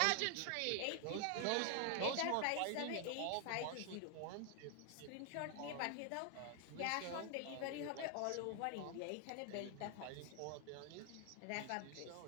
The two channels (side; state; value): both; different; correlation 0.00